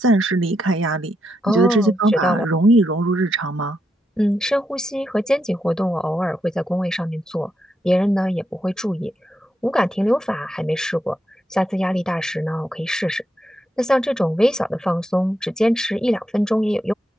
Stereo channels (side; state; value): both; normal; correlation 0.82